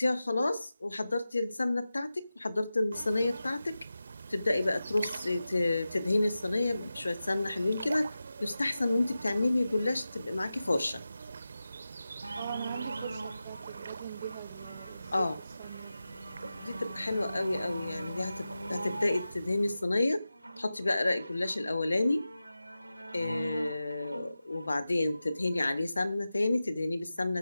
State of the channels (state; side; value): inverted; both; correlation -0.94